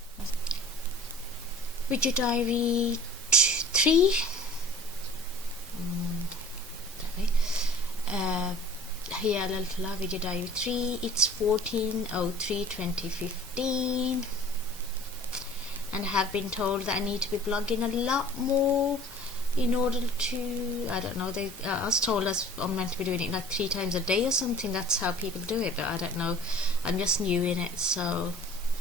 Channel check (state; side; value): normal; both; correlation 0.46